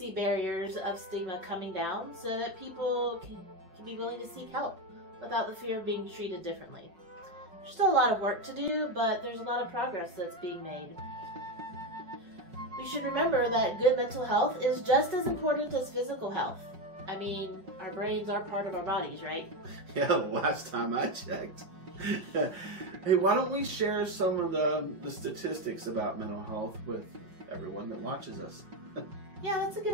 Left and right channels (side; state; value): left; late; 5.6 ms